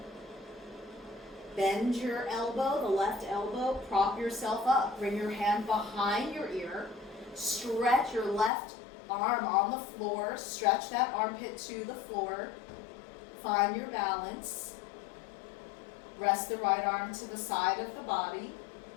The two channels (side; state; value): right; drops out; at 8.5 s